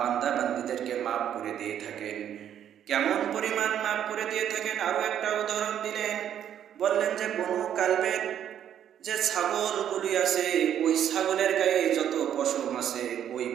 বান্দাদেরকে মাফ করে দিয়ে থাকেন। কেমন পরিমাণ মাফ করে দিয়ে থাকেন আরো একটা উদাহরণ দিলেন। বললেন যে বনু কালবের যে ছাগলগুলি আছে, ওই ছাগলের গায়ে যত পশম আছে ওই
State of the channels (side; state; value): left; quieter; 9.9 dB